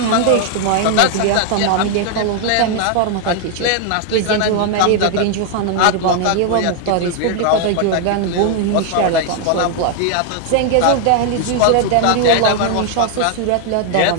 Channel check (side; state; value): both; different; correlation 0.00